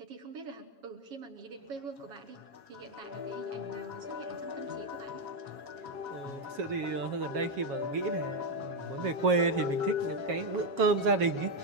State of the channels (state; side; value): late; left; 7.3 ms